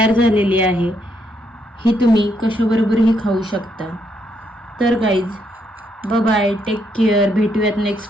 झालेली आहे। ही तुम्ही कशाबरोबरही खाऊ शकता। तर guys, bye bye, take care, भेटूयात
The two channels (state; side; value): normal; both; correlation 0.75